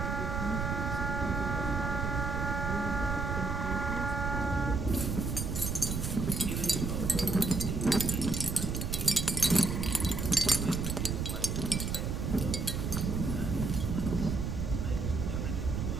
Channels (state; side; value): noise; right; rumble, 1 dB below the sound